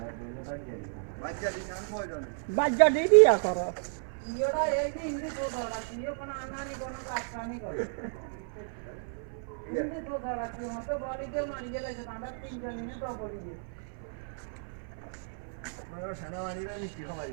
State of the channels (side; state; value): left; silent; 56 dB below the other